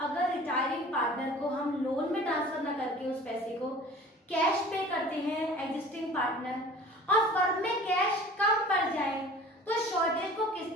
अगर रिटायरिंग पार्टनर को हम लोन में ट्रांसफर न करके उस पैसे को कैश पे करते हैं एग्जिस्टिंग पार्टनर और फर्म में कैश कम पड़ जाए तो शॉर्टेज को किस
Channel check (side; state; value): both; normal; correlation 0.44